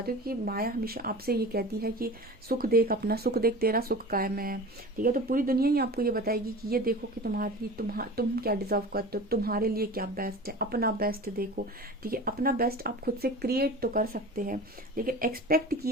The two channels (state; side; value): normal; both; correlation 0.35